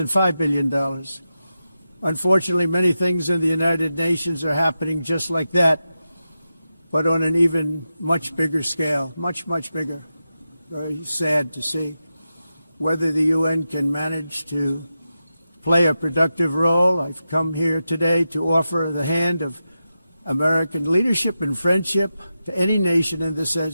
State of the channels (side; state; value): both; inverted; correlation -0.90